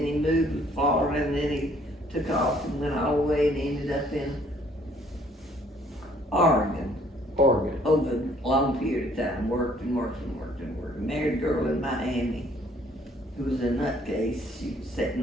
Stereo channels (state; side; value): normal; both; correlation 0.61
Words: he moved to Florida and then he took off and went all the way and ended up in Oregon Oregon. over a long period of time, worked and worked and worked and worked. Married a girl in Miami who was a nutcase. She was